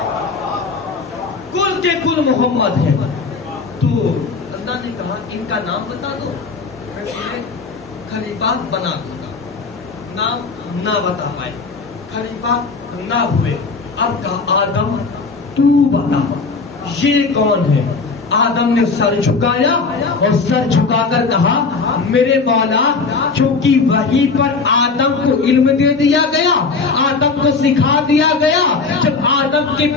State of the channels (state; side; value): quieter; right; 4.3 dB